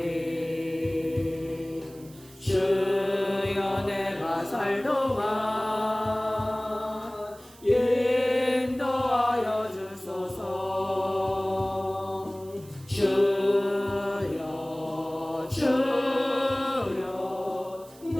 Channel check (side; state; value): right; noise; hiss, 23 dB below the sound